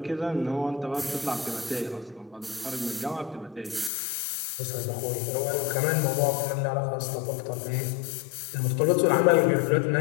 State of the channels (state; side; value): drops out; right; at 3.9 s